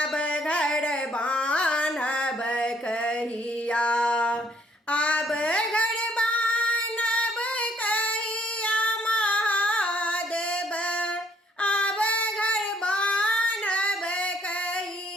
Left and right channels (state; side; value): normal; both; correlation 0.66